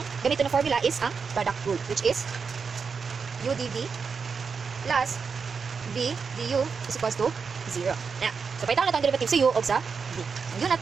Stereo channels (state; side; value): quieter; left; 5.6 dB